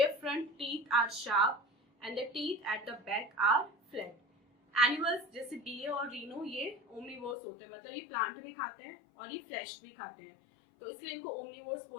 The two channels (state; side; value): drops out; right; at 7.4 s